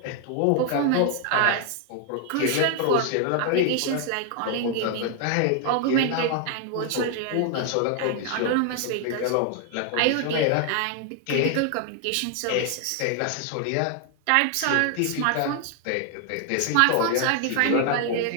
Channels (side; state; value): both; different; correlation 0.00